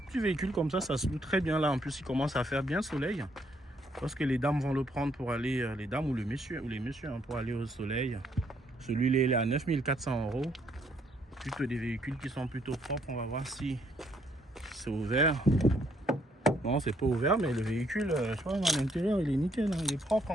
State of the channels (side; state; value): both; normal; correlation 0.70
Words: petit véhicule comme ça se loue très bien. Là, en plus, il commence à faire bien soleil. Parce que les dames vont le prendre pour aller, les dames ou les messieurs hein, pour aller au soleil. Celui-là, il est à 9 400 €. Plutôt des véhicules qui sont plutôt propres. On va voir si c'est ouvert. Non, c'est pas ouvert, mais le véhicule, je vois, à l'intérieur, il est nickel. Hein, il est propre.